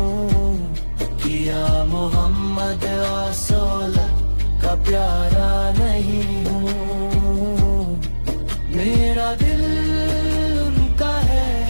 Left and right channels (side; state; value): both; inverted; correlation -1.00